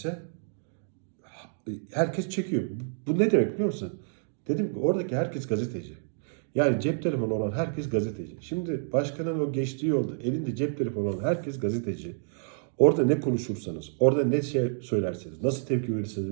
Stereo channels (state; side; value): silent; left; digital silence